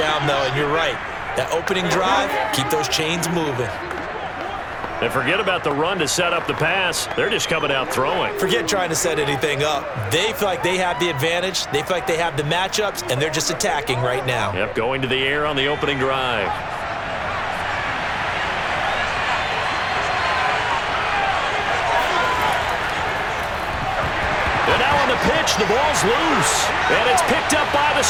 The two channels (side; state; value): both; identical; correlation 1.00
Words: though. And you're right. That opening drive, keep those chains moving. And forget about the run to set up the pass. They're just coming out throwing. Forget trying to set anything up. They feel like they have the advantage. They feel like they have the matchups, and they're just attacking right now. Yep, going to the air on the opening drive. And now on the pitch, the ball's loose. And it's picked up by the